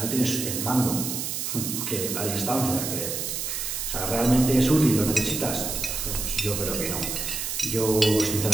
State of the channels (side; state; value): right; noise; hiss, 3 dB below the sound